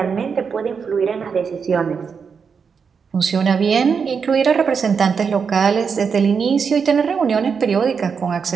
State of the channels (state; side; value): quieter; left; 6.0 dB